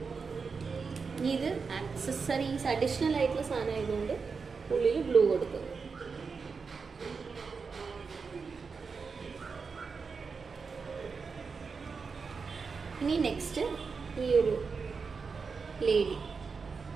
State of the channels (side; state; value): left; quieter; 5.1 dB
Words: ഇനി ഇത് ആക്സസറീസ് അഡീഷണൽ ആയിട്ടുള്ള സാധനം ആയതുകൊണ്ട് ഉള്ളിൽ ബ്ലൂ കൊടുക്കും. ഇനി നെക്സ്റ്റ് ഈ ഒരു ലേഡി,